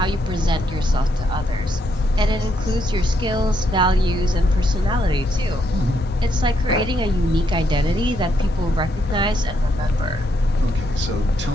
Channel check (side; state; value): both; normal; correlation 0.76